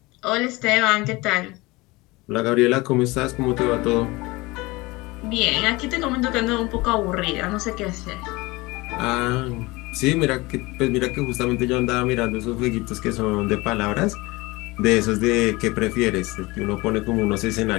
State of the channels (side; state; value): right; quieter; 22.5 dB